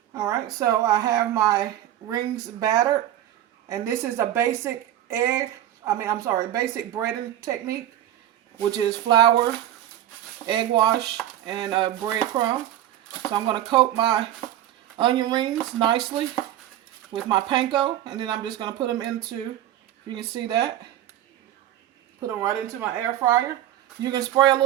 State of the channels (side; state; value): left; quieter; 12.5 dB